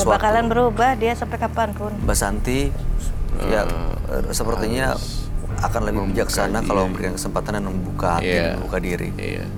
sesuatu. bakalan berubah dia sampai kapanpun. Mbak Santi ya sepertinya akan lebih bijaksana kalau memberikan kesempatan dan membuka hati, dan membuka diri. Iya.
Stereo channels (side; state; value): both; identical; correlation 1.00